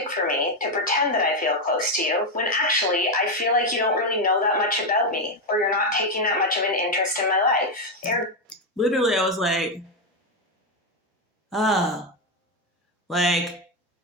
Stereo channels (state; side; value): normal; both; correlation 0.06